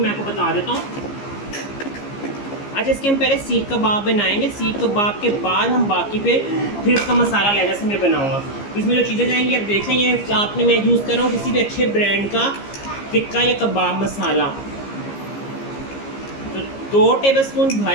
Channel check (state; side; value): late; right; 15 ms